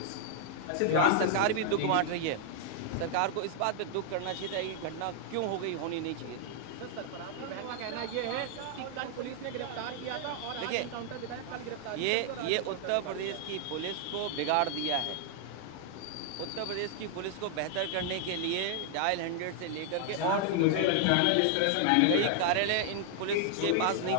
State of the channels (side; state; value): both; different; correlation 0.00